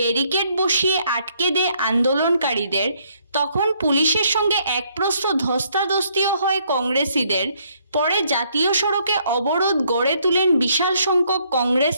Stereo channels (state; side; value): inverted; both; correlation -0.68